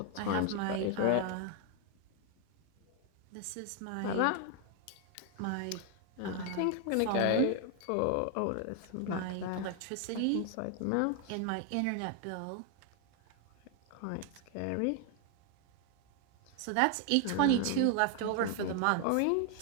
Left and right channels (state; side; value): different; both; correlation 0.01